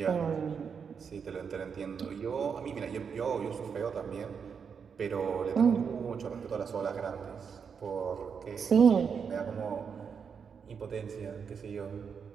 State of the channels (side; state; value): left; quieter; 6.5 dB